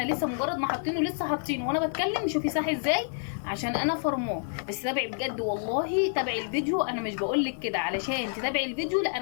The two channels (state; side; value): silent; right; digital silence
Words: لسه مجرد ما حاطينه لسه حاطينه وانا بتكلم. شوفي ساح ازاي عشان انا فرماه. بس تابعي بجد والله، تابعي الفيديو. انا مش بقولك كده علشان تتابعي الفيديو، لا،